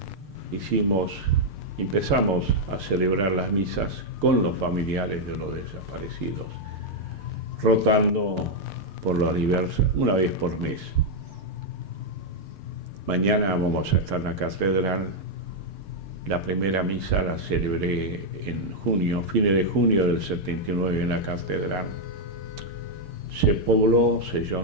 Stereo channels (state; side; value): late; left; 6.7 ms